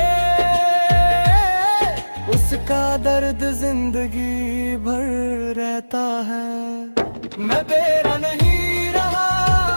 उसका दर्द जिंदगी भर रहता है। मैं तेरा नहीं रहा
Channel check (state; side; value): inverted; both; correlation -1.00